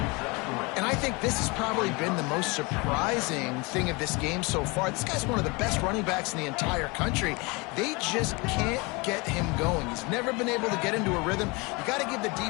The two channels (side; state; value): right; quieter; 27.0 dB